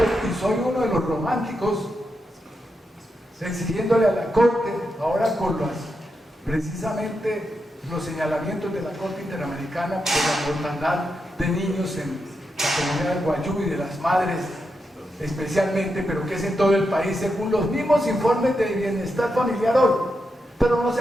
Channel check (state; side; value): normal; both; correlation 0.85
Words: soy uno de los románticos exigiéndole a la Corte, ahora con precisamente los señalamientos de la Corte Interamericana por la mortandad de niños en la comunidad del Guayú y de las madres especialmente, pero que es en todo el país, según los mismos informes de bienestar familiar hoy, pero no